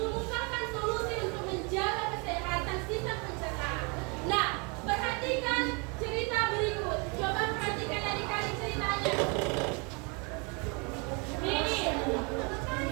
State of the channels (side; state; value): left; quieter; 32.4 dB